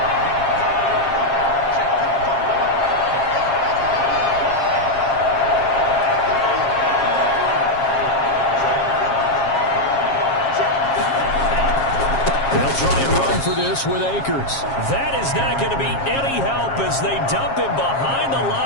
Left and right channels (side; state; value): right; late; 7.4 ms